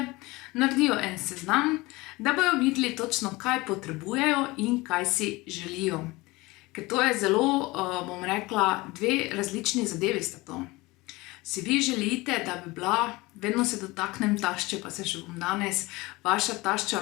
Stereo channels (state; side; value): quieter; right; 21.9 dB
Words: naredijo en seznam, da bojo videli točno, kaj potrebujejo in kaj si želijo. Ker to je zelo, bom rekla, dve različni zadevi sta to. Si vi želite, da bi bila, vedno se dotaknem tašče, pa se še bom danes, vaša tašča